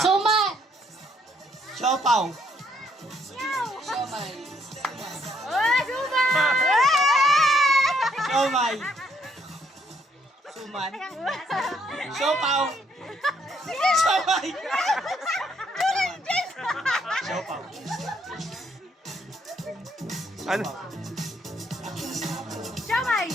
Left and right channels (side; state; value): both; normal; correlation 0.70